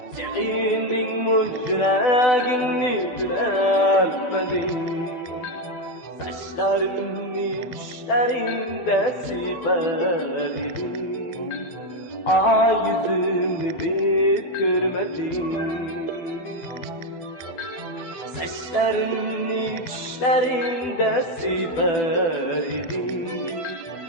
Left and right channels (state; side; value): late; right; 12 ms